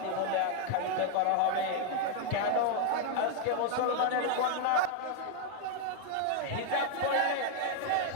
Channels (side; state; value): both; different; correlation 0.00